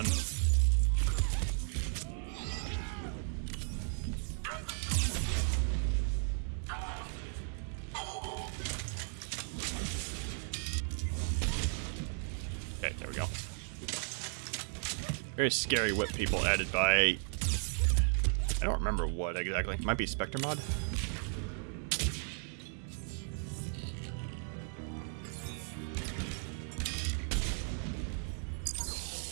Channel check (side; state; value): left; silent; 54 dB below the other